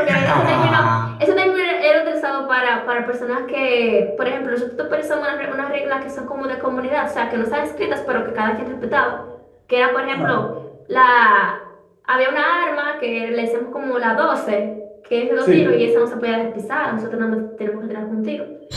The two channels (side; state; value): both; identical; correlation 1.00